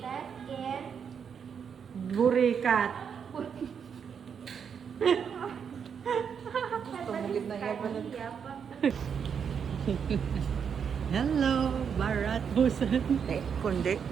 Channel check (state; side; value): quieter; left; 7.1 dB